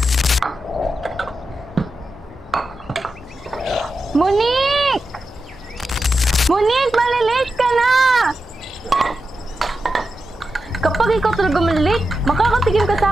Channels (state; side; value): normal; both; correlation 0.90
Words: Monique! Monique, malilate ka na! Kapag ikaw talaga malilate, makakatigim ka